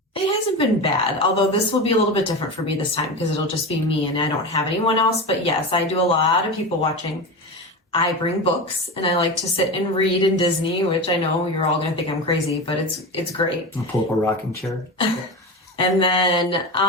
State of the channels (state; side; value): normal; both; correlation 0.23